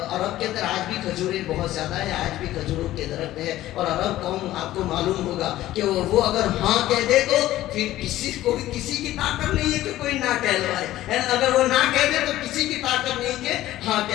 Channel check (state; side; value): quieter; right; 14.8 dB